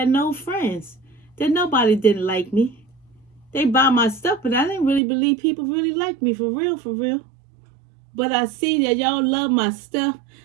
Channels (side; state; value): left; drops out; at 5.0 s